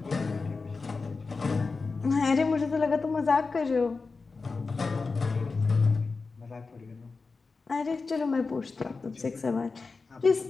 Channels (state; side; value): quieter; right; 4.2 dB